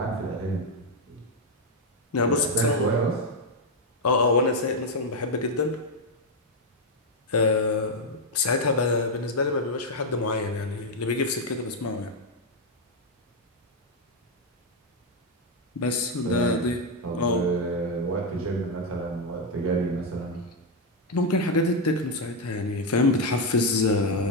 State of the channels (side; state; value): both; normal; correlation 0.03